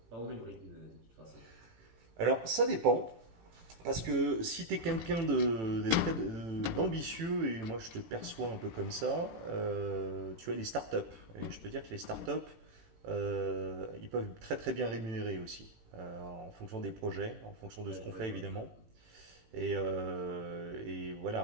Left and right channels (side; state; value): left; late; 18 ms